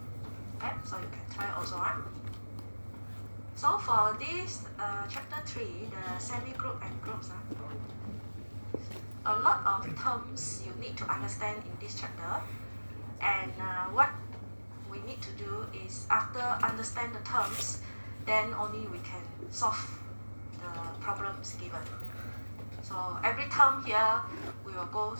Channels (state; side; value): inverted; both; correlation -1.00